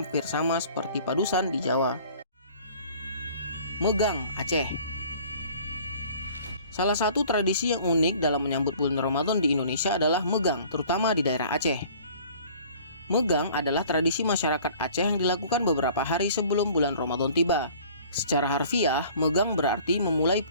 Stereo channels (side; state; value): both; inverted; correlation -0.49